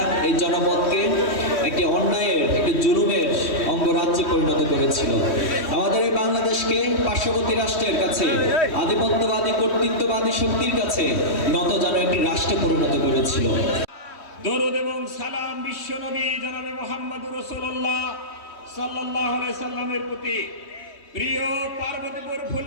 এই জনপদকে একটি অন্যায়ের, একটি জুলুমের অঙ্গরাজ্যে পরিণত করেছিল। আমাদের এই বাংলাদেশকে পার্শ্ববর্তী রাষ্ট্রের কাছে, আধিপত্যবাদী কর্তৃত্ববাদী শক্তির কাছে নত যেন একটি রাষ্ট্রে পরিণত করেছিল। দরুদ এবং সালাম বিশ্বনবী জনাবে মুহাম্মদুর রাসূলুল্লাহ সাল্লাল্লাহু আলাইহি সাল্লামের প্রতি। প্রিয় পার্বতীপুর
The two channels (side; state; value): right; late; 3.1 ms